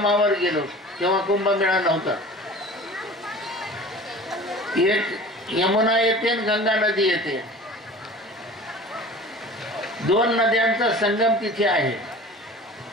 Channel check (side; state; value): both; normal; correlation 0.41